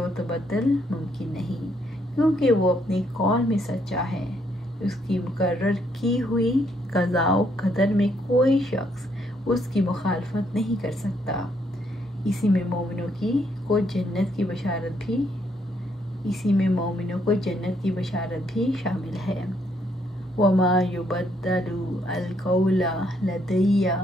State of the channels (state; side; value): normal; both; correlation 0.72